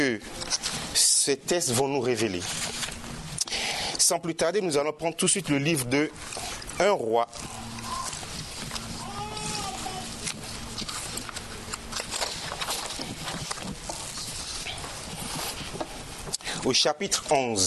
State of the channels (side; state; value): both; identical; correlation 1.00